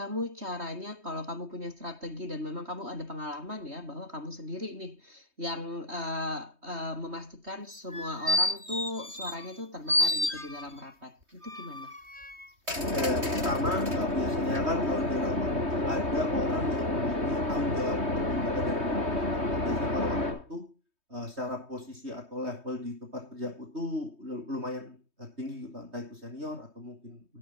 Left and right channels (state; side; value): late; left; 3.2 ms